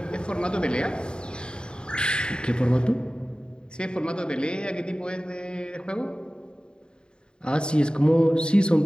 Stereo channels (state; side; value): late; right; 0.050 ms